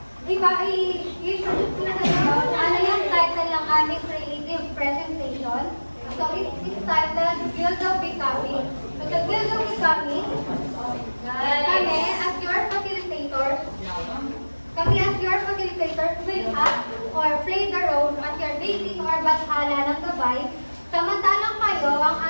i-introduce ko na kayo ano yung title ng aming creative presentation. So it's titled Guild of Becoming. So the Guild of Becoming, kami as your facilitators, will act or play the role as your basis or bathala ng gabay, samantalang kayo ang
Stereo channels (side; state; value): both; inverted; correlation -1.00